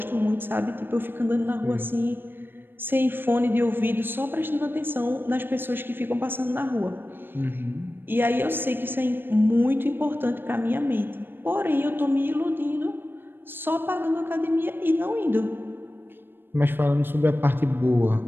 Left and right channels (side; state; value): left; late; 0.099 ms